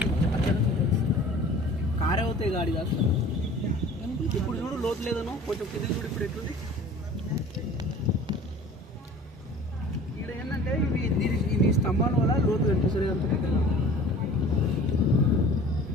అక్కడ కారే అవుతాయి గాడి కాదు. ఇప్పుడు చూడు లోతు లేదనో కొంచెం కింద చూడు. ఇప్పుడు ఎట్లుంది ఇక్కడ ఏంటంటే ఇవి స్తంభాల వల్ల లోతు కనిపిస్తుంది. అంత దగ్గర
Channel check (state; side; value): normal; both; correlation 0.45